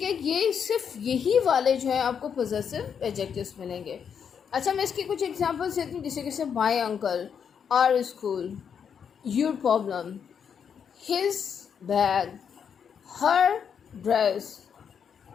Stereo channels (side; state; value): right; quieter; 7.3 dB